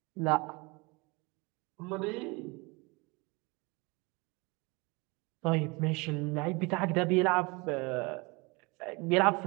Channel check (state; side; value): quieter; left; 26.8 dB